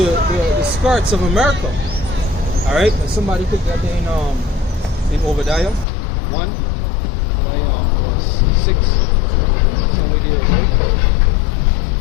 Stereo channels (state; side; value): drops out; right; at 5.9 s